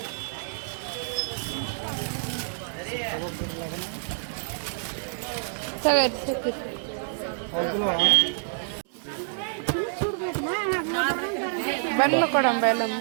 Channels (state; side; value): silent; left; digital silence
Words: ಬನ್ನು ಕೊಡಂಬ ಎಲ್ಲ